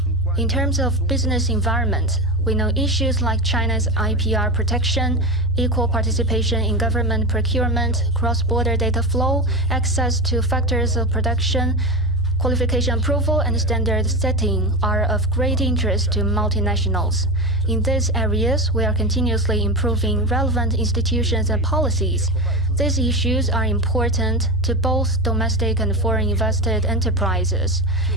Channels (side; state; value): both; normal; correlation 0.22